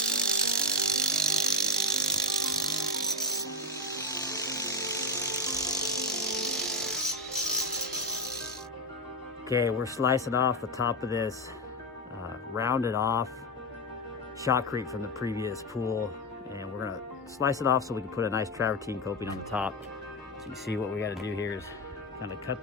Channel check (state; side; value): normal; both; correlation 0.09